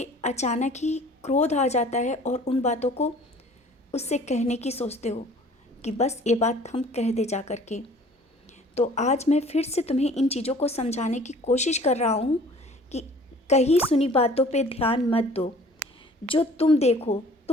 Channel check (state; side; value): normal; both; correlation 0.50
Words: अचानक ही क्रोध आ जाता है और उन बातों को उससे कहने की सोचते हो कि बस ये बात हम कह दे जा कर के, तो आज मैं फिर से तुम्हें इन चीज़ों को समझाने की कोशिश कर रहा हूँ कि कहीं सुनी बातों पे ध्यान मत दो। जो तुम देखो,